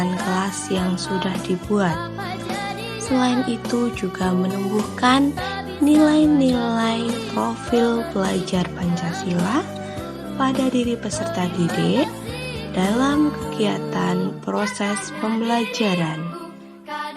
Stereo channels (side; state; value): both; identical; correlation 1.00